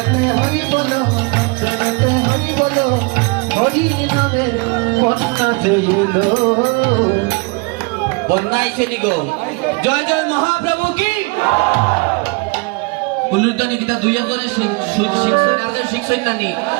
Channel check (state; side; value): quieter; left; 29.5 dB